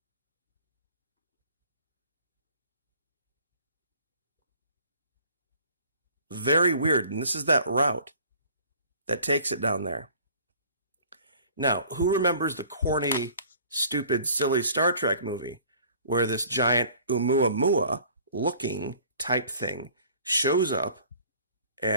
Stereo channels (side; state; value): both; inverted; correlation -0.51